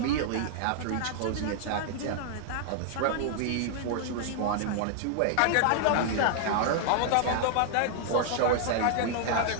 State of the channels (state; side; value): different; both; correlation -0.01